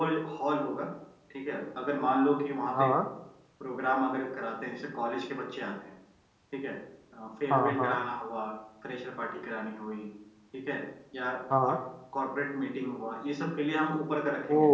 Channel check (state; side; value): identical; both; correlation 1.00